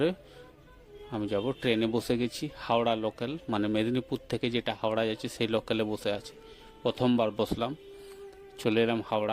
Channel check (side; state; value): both; identical; correlation 1.00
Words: আমি যাব। ট্রেনে বসে গেছি, হাওড়া লোকাল, মানে মেদিনীপুর থেকে যেটা হাওড়া যাচ্ছে সেই লোকালে বসে আছি। প্রথমবার বসলাম, চলে এলাম